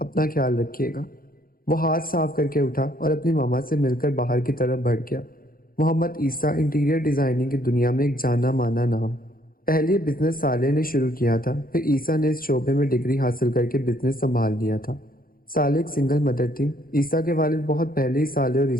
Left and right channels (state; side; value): late; right; 0.42 ms